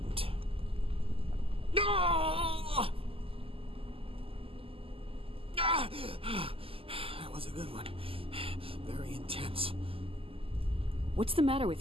No! That was a good one. Very intense. What's the matter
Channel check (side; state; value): left; late; 0.27 ms